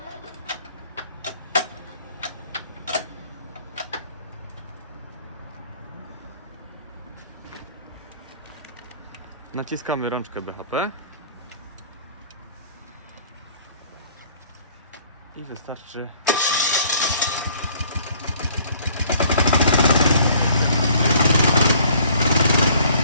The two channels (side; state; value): both; inverted; correlation -0.57